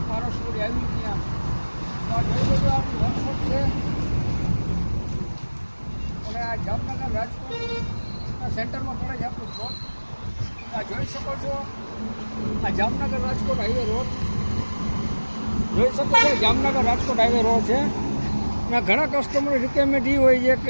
પારસપુરી આવી ત્યાં તો આ જોઈ લેજો આપણી વર્કશોપ છે. અને આ જામનગર રાજકોટના સેન્ટરમાં પડે છે આપણું પ્લોટ. આ જોઈ શકો છો આ જામનગર રાજકોટ હાઈવે રોડ જોઈ શકો છો. જામનગર રાજકોટ હાઈવે રોડ છે. અને ઘણા કસ્ટમરની રિક્વાયરમેન્ટ એ હોય છે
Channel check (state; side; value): inverted; both; correlation -1.00